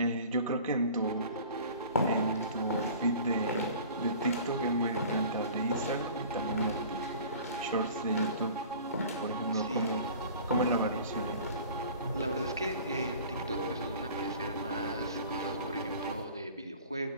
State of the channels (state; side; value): inverted; both; correlation -0.44